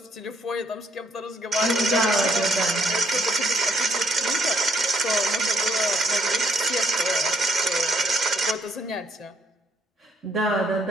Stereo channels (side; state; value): both; normal; correlation 0.69